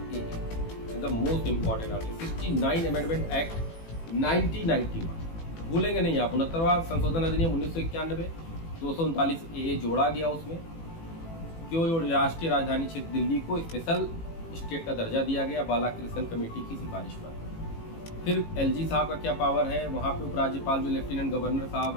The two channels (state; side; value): late; right; 18 ms